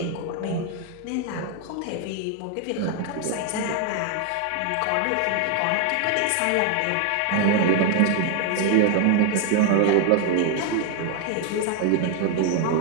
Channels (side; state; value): both; different; correlation 0.00